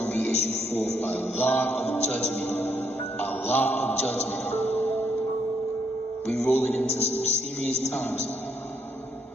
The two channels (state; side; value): normal; both; correlation 0.73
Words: to be issued forth. A lot of judgment. A lot of judgment. We're rolling into some serious times.